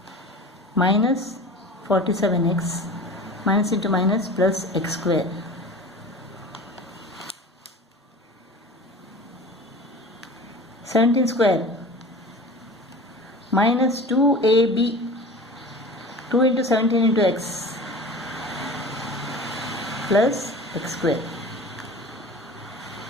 minus 47x minus into minus plus x square. 17 square minus 2ab, 2 into 17 into x plus x square.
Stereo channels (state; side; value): normal; both; correlation 0.38